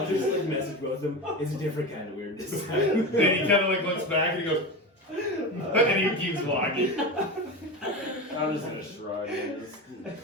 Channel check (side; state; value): both; normal; correlation 0.23